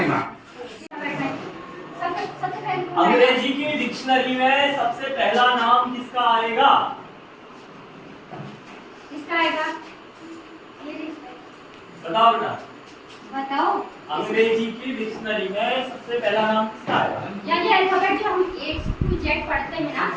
अंग्रेजी की डिक्शनरी में सबसे पहला नाम किसका आएगा? क्या आएगा? बताओ बेटा, बताओ। अंग्रेजी की डिक्शनरी में सबसे पहला नाम किसका आएगा? यानी अल्फाबेट जो हम A to Z पढ़ते हैं ना,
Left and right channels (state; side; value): identical; both; correlation 1.00